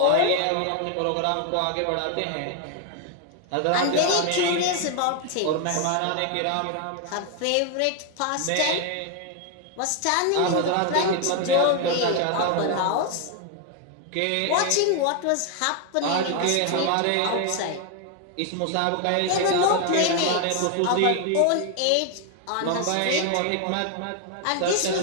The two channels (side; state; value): both; different; correlation 0.00